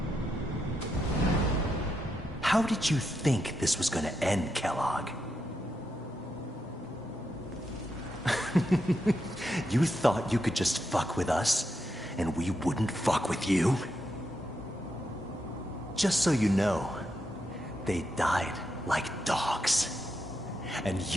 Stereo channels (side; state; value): both; normal; correlation 0.83